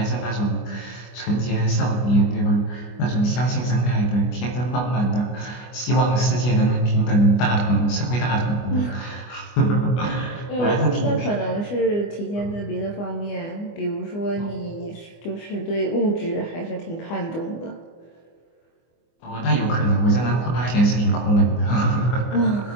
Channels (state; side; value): late; right; 24 ms